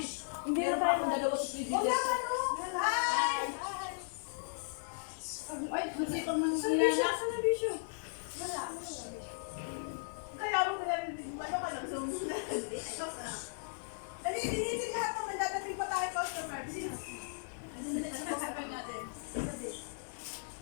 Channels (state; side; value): silent; right; 54 dB below the other